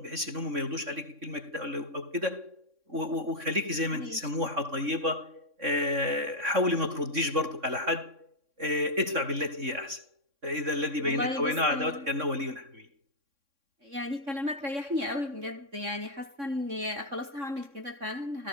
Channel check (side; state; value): left; late; 3.6 ms